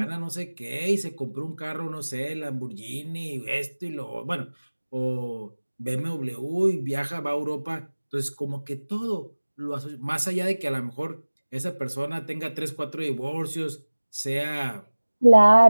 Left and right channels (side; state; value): both; inverted; correlation -1.00